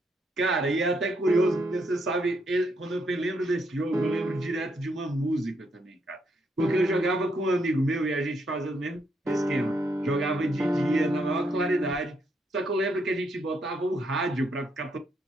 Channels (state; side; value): normal; both; correlation 0.76